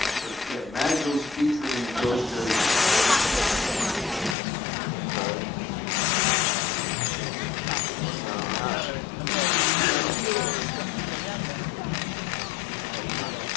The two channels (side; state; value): right; drops out; at 4.4 s